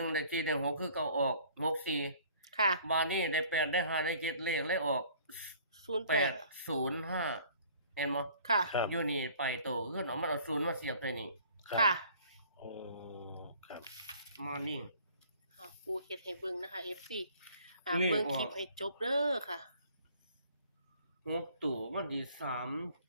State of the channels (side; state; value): both; inverted; correlation -0.54